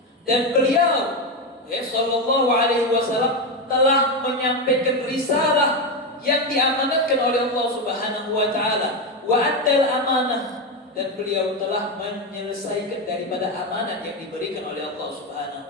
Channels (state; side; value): normal; both; correlation 0.12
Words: Dan beliau sallallahu alaihi wasallam telah menyampaikan risalah yang diamanatkan oleh Allah Subhanahu wa taala. Wa addal amanah, dan beliau telah menyelesaikan daripada amanat yang diberikan oleh Allah